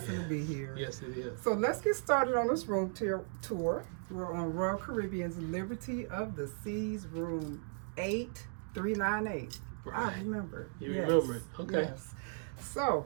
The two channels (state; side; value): silent; left; 54 dB below the other